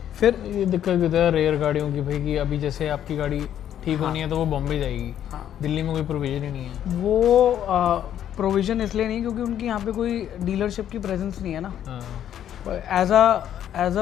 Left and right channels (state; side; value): quieter; right; 10.5 dB